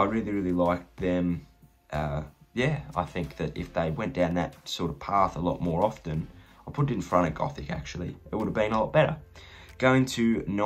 really, really liked them. Yeah, I think that if they went down that sort of path a lot more often, I'll put it in front of Gothic, actually. It would have been a lot better. Going to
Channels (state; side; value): identical; both; correlation 1.00